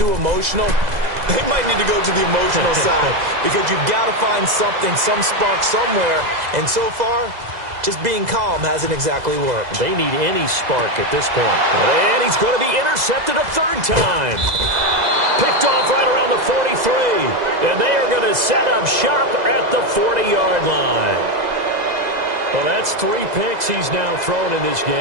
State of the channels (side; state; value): left; late; 2.0 ms